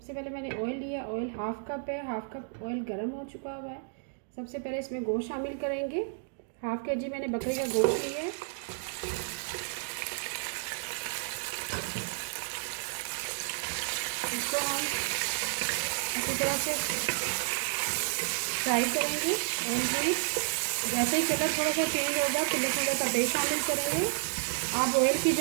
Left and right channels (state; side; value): silent; left; digital silence